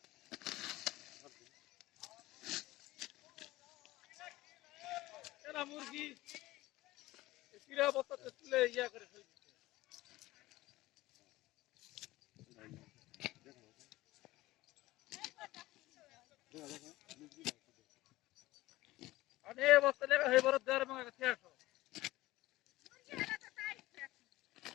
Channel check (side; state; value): right; quieter; 18.1 dB